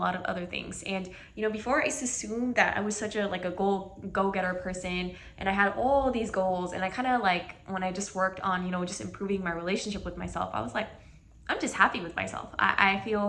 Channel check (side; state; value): both; identical; correlation 1.00